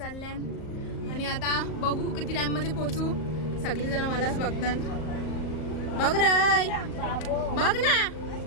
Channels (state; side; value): late; right; 38 ms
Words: आणि आता बघू किती टाइम मध्ये पोहोचू. सगळीजण मलाच बघतात. बघ रे, बघ ना.